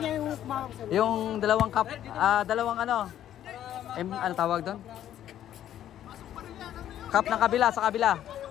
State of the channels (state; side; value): quieter; right; 11.3 dB